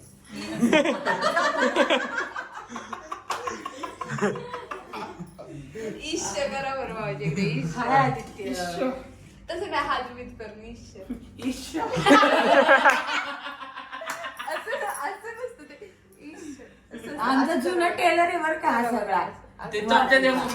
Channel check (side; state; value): both; identical; correlation 1.00